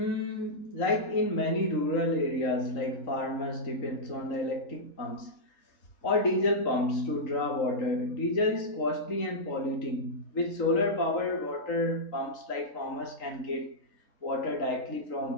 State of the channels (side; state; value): right; late; 3.8 ms